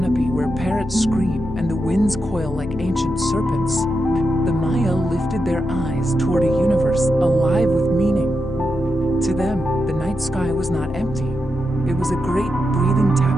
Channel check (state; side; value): noise; left; hum, 14 dB below the sound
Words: where parrots scream and the winds coil like ancient serpents, the Maya lifted their eyes toward a universe alive with meaning. To them, the night sky was not empty. It was a great breathing